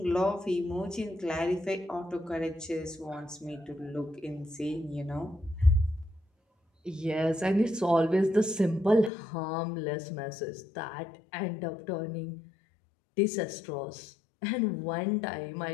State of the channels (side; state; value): right; drops out; at 9.1 s